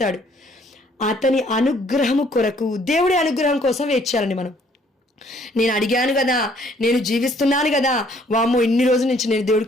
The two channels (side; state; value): both; normal; correlation 0.62